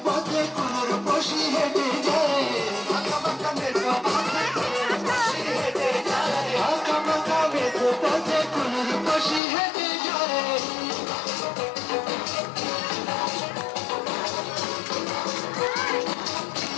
পথে কুনুর বসি হেঁটে যায় বাঁকা বাঁকা মেঠো পথে কুনুর বসি হেঁটে যায় বাঁকা বাঁকা মেঠো পথে কুনুর বসি হেঁটে যায়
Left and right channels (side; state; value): right; drops out; at 9.4 s